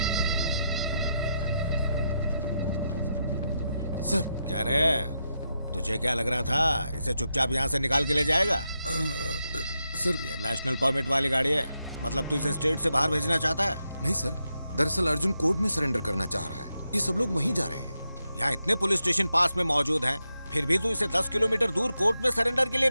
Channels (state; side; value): inverted; both; correlation -0.85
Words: सर। क्या रे, तुझे क्या लग रहा था इसे चुपचाप यहाँ से निकाल के ले जाएगा? सर, ये नेशनल परमिट वाली गाड़ी है, मतलब तू इसे स्टेट से बाहर भेजना चाहता है? नहीं सर, दरअसल अर्जुन कोर्ट में सरेंडर करना चाह रहा है। ये सब लोग वहीं जा रहे हैं। यहाँ इतने पुलिस स्टेशन पास में मौजूद हैं, फिर भी तू इसे 10 किलोमीटर दूर कोर्ट में सरेंडर के लिए